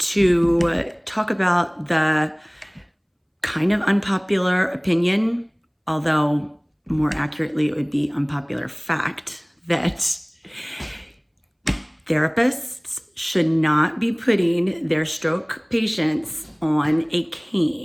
talk about the kind of unpopular opinion, although more accurately it would be unpopular fact, that therapists should not be putting their stroke patients on a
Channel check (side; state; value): both; identical; correlation 1.00